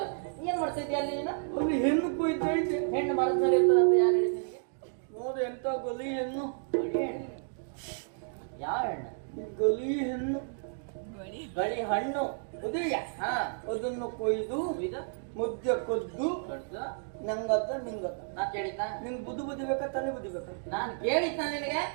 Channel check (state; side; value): silent; left; digital silence